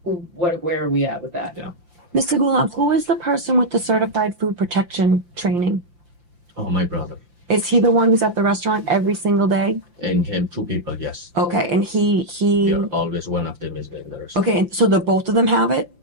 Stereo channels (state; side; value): late; left; 5.8 ms